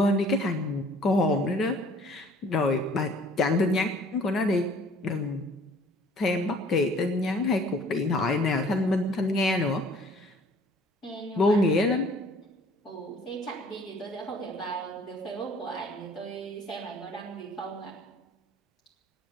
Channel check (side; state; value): both; normal; correlation 0.53